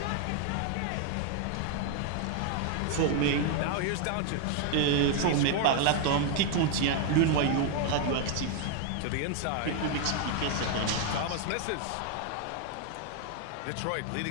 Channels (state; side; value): different; both; correlation 0.00